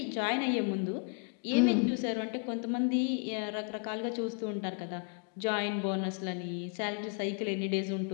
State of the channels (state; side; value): quieter; right; 38.1 dB